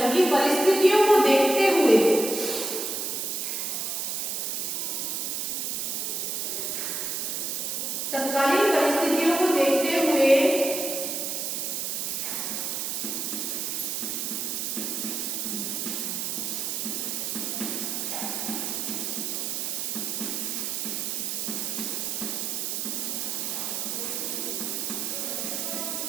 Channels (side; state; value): right; noise; hiss, 1 dB below the sound